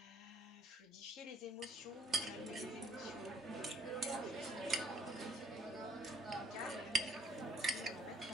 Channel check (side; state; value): both; normal; correlation 0.62